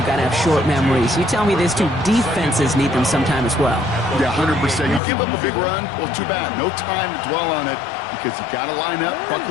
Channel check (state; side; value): drops out; right; at 5.0 s